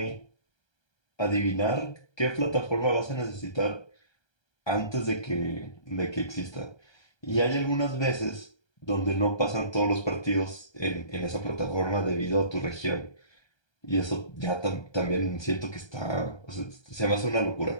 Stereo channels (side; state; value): right; late; 1.3 ms